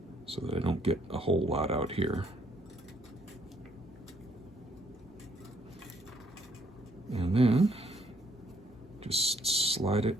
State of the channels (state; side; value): normal; both; correlation 0.68